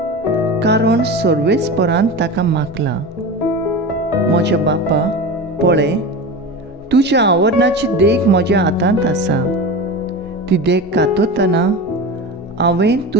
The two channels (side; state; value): both; normal; correlation 0.27